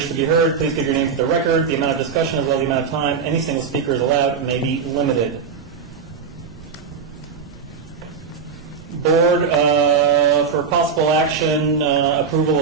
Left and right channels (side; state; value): left; quieter; 6.0 dB